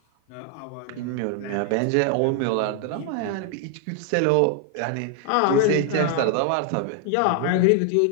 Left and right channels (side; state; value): both; different; correlation 0.00